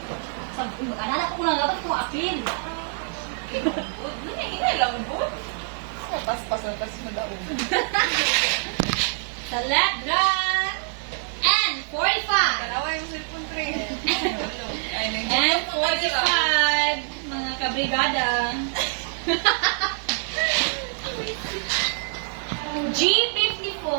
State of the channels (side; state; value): left; silent; 62 dB below the other